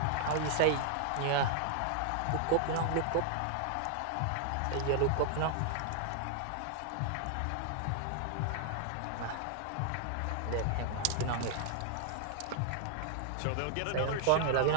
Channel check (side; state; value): both; different; correlation 0.00